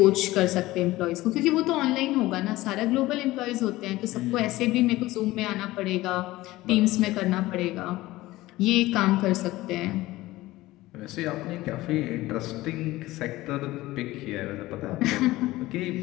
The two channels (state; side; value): quieter; right; 18.0 dB